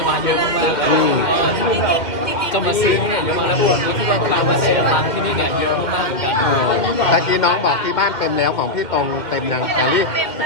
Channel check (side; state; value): right; late; 2.1 ms